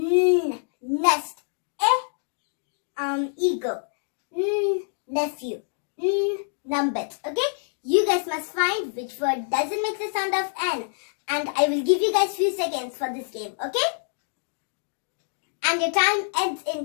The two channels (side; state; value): right; silent; digital silence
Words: Nest. Eagle. Nephew. Numbet. Okay? You guys must find which word doesn't make the sound of N. And I will give you guys few seconds for this game, okay? And your time ends